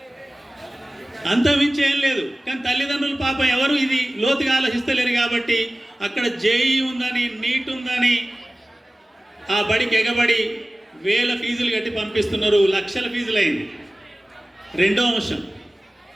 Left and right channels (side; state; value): both; normal; correlation 0.97